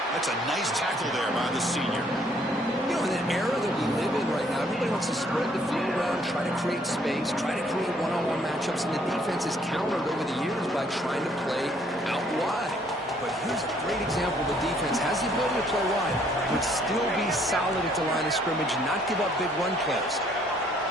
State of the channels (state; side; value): normal; both; correlation 0.65